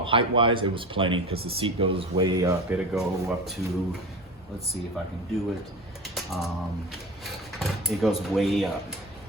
it was plenty because the seat goes way up. It'll go up to, let's see if I can do it. It goes way up.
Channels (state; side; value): normal; both; correlation 0.30